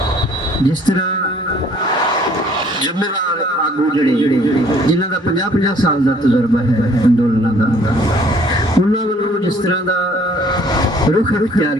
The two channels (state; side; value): normal; both; correlation 0.58